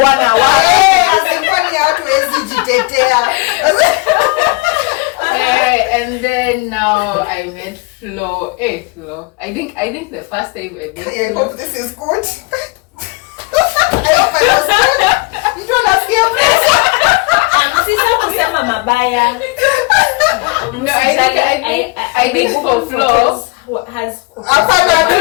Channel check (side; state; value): right; quieter; 26.9 dB